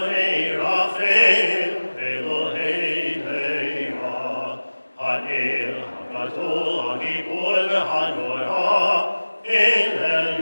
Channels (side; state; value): both; inverted; correlation -1.00